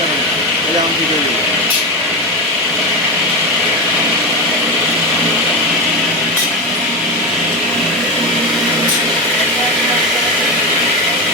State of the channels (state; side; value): normal; both; correlation 0.17